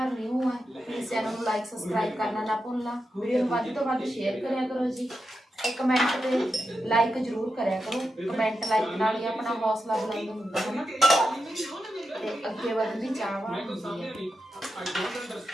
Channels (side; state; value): both; normal; correlation 0.88